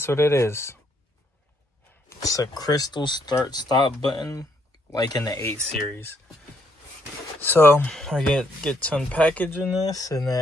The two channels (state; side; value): normal; both; correlation 0.72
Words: what it is? It's a crystal start stop button, like in the 8 series. So I get to unpackaging this, and